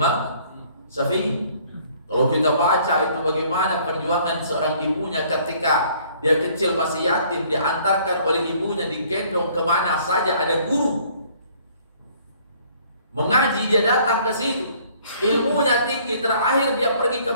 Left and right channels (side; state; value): both; inverted; correlation -0.59